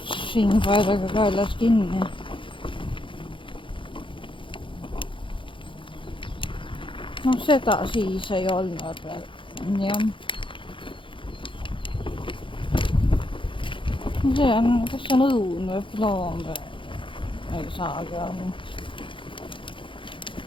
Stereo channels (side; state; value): right; late; 0.25 ms